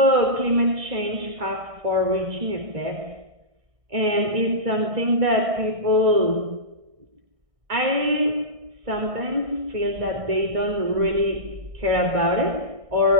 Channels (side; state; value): left; late; 1.6 ms